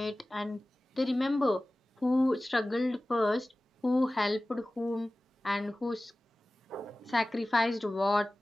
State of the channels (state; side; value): normal; both; correlation 0.97